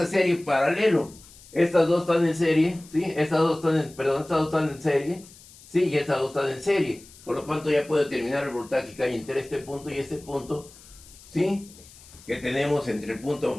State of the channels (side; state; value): left; noise; hiss, 22 dB below the sound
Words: serie paralelo. Estas dos están en serie, ¿sí? Estas dos están en serie, ¿sí? Y estas dos están en serie. Por lo tanto, ya puedo determinar el voltaje que hay entre este punto y este punto, ¿sí? Que tenemos entre el punto,